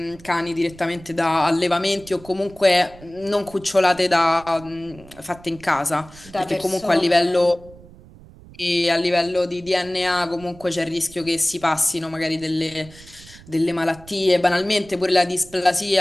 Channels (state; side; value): noise; right; rumble, 21 dB below the sound